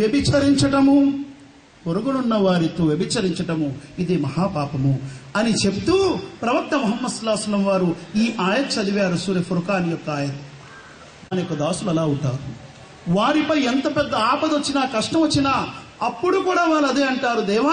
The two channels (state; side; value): identical; both; correlation 1.00